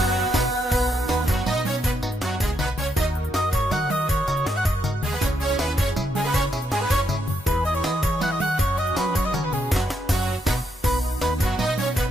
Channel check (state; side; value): normal; both; correlation 0.79